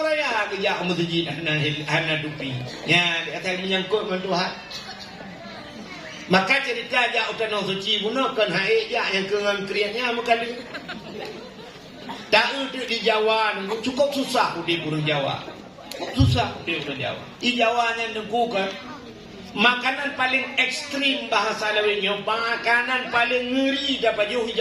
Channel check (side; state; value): both; identical; correlation 1.00